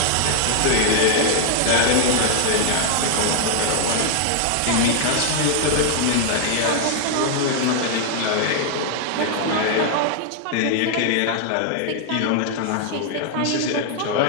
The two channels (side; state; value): both; different; correlation 0.00